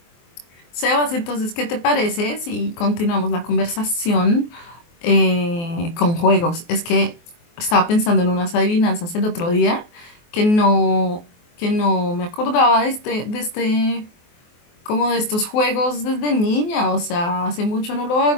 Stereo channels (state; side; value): late; right; 24 ms